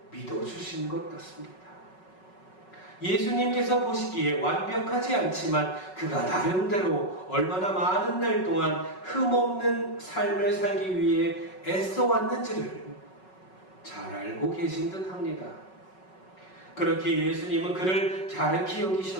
믿어주신 것 같습니다. 예수님께서 보시기에 완벽하지 않지만 그가 나름대로 얼마나 많은 날 동안 흠없는 삶을 살기 위해 애써왔는지를 잘 알고 계신 듯 합니다. 그렇게 예수님은 그를 갸륵히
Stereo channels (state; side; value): late; right; 5.4 ms